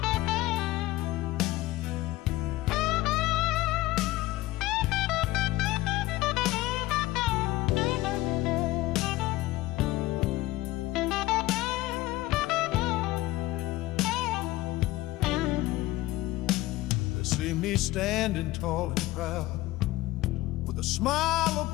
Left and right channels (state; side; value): quieter; right; 17.7 dB